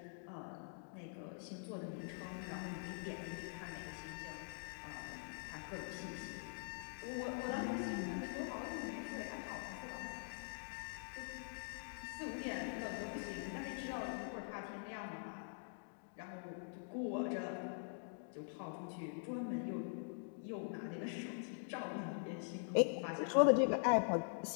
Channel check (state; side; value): silent; right; digital silence